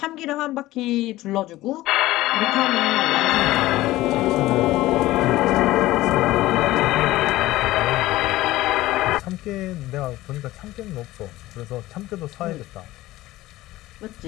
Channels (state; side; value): quieter; right; 17.0 dB